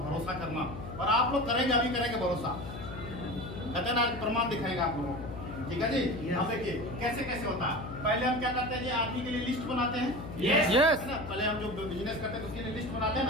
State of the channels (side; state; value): left; noise; hum, 10 dB below the sound